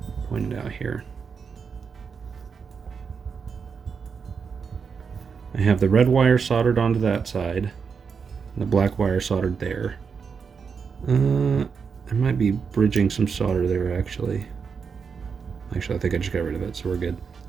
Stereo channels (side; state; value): left; quieter; 5.9 dB